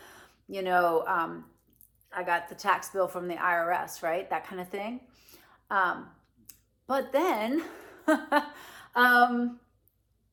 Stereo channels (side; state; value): both; identical; correlation 1.00